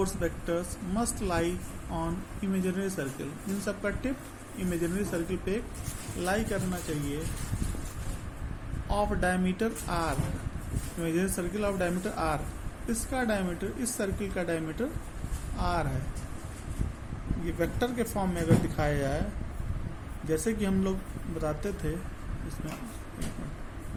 vectors must lie on imaginary circle। इन सब का tip imaginary circle पे lie करना चाहिए of diameter R, imaginary circle of diameter R. इसका diameter, इस circle का diameter R है। ये वेक्टर के फॉर्म में अगर दिखाया जाए, जैसे कि हम लोग बताते थे इसमें,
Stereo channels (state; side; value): identical; both; correlation 1.00